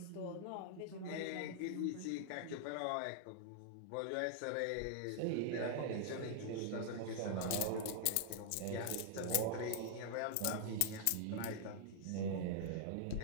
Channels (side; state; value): both; different; correlation -0.01